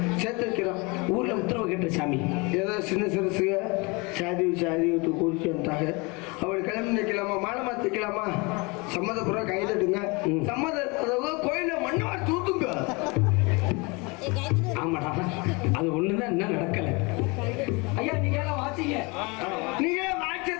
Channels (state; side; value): quieter; right; 27.8 dB